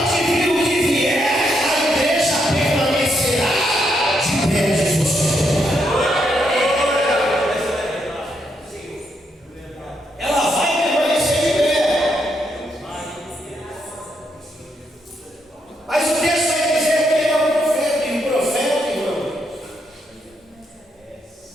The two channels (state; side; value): normal; both; correlation 0.78